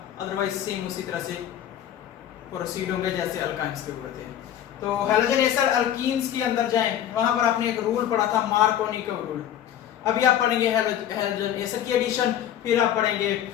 अदरवाइज सेम उसी तरह से प्रोसीड होंगे जैसे अल्काइंस के हुए थे. तो हेलोजन एसिड अल्कीन्स के अंदर जाएं, वहां पर आपने एक रूल पढ़ा था मार्कोनी का रूल. अभी आप पढ़ेंगे हेलोजन एसिड की एडिशन, फिर आप पढ़ेंगे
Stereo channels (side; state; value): right; quieter; 10.8 dB